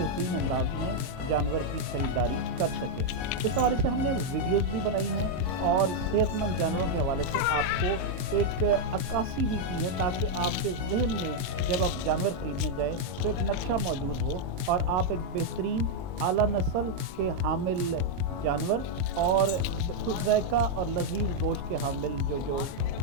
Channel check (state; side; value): late; left; 22 ms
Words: अंदाज में जानवर की ख़रीदारी कर सकें। इस हवाले से हमने वीडियोस भी बनाई हैं और सेहतमंद जानवरों के हवाले से आपको एक अक्कासी भी की है, ताकि आपके जहन में जब आप जानवर ख़रीदने जाएं तो एक नक्शा मौजूद हो और आप एक बेहतरीन आला नस्ल के हामिल जानवर और खुश ज़ायक़ा और लजीज़ गोश्त के हामिल जो